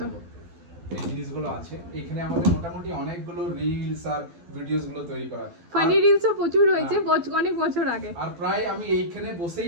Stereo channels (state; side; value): late; left; 12 ms